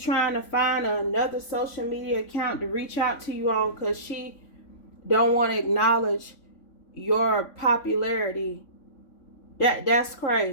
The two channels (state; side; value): late; right; 3.5 ms